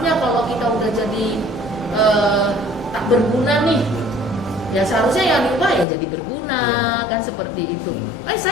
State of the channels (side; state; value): right; drops out; at 5.9 s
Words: kalau kita udah jadi tak berguna nih, ya seharusnya yang diubah ya jadi berguna, kan seperti itu.